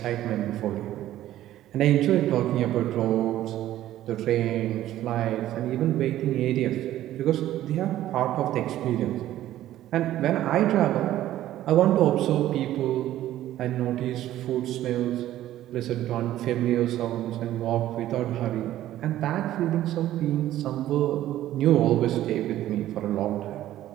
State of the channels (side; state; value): left; quieter; 13.5 dB